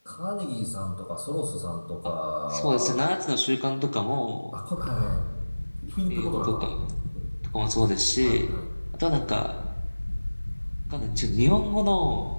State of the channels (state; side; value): inverted; both; correlation -1.00